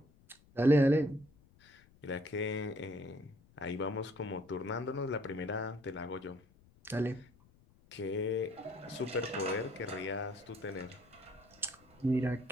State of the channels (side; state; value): left; noise; rumble, 28 dB below the sound